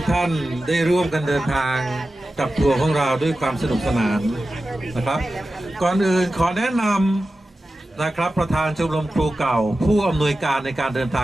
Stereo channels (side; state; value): both; normal; correlation 0.93